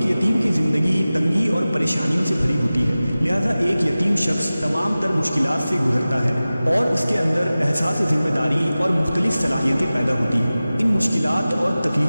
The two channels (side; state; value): both; inverted; correlation -0.96